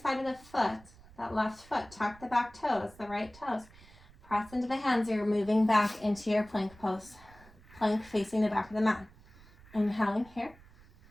side of the foot. That left foot, tuck the back toes, the right toes. Press into the hands. You're moving back into your plank pose. Plank facing the back of the mat. Inhaling here.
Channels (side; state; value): right; noise; rumble, 23 dB below the sound